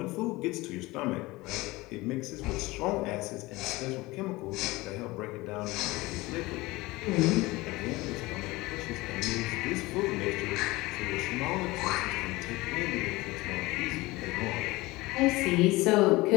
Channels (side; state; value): right; quieter; 20.9 dB